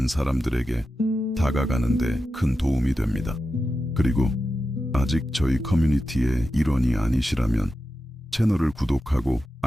사람들에게 다가가는 데 큰 도움이 됩니다. 그리고 아직 저희 커뮤니티의 일원이 아니시라면 채널을 구독하고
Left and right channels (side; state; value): both; normal; correlation 0.91